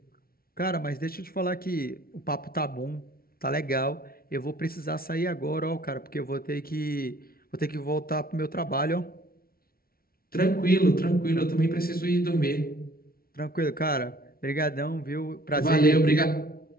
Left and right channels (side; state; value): right; late; 0.43 ms